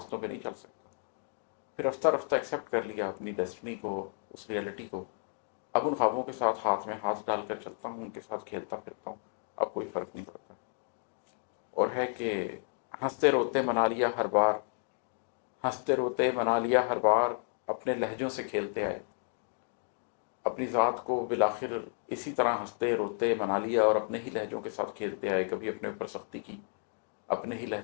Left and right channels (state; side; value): silent; right; digital silence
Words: پہ نہیں چل سکتا، پھر رفتہ رفتہ ایکسیپٹ کر لیا اپنی ڈیسٹنی کو، اس ریئلٹی کو۔ اب ان خوابوں کے ساتھ ہاتھ میں ہاتھ ڈال کر چلتا ہوں، ان کے ساتھ کھیلتا پھرتا ہوں، اب کوئی فرق نہیں پڑتا۔ اور ہے کہ ہنستے روتے منا لیا ہر بار، ہنستے روتے منا لیا ہر بار، اپنے لہجوں سے کھیلتے آئے، اپنی ذات کو بالآخر اسی طرح ہنستے روتے منا لیا اور اپنے ہی لہجوں کے ساتھ کھیلتے آئے، کبھی اپنے اوپر سختی کی، اپنے ہی